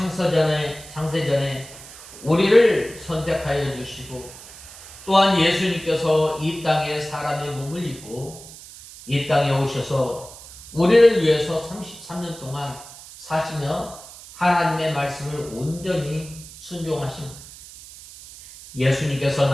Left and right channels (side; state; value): right; noise; hiss, 17 dB below the sound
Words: 우리를 선택하여 주시고 또한 예수님께서 이 땅에 사람의 몸을 입고 이 땅에 오셔서 우리를 위해서 33년 동안 사시며 하나님의 말씀을 온전히 순종하십니다. 예수님께서